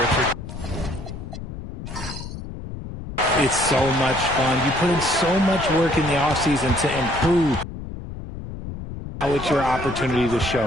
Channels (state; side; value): noise; left; rumble, 9 dB below the sound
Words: It's so much fun. You put in so much work in the offseason to improve. Now it's your opportunity to show